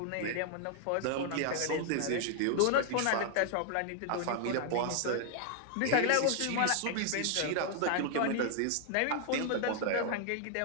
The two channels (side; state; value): both; different; correlation 0.00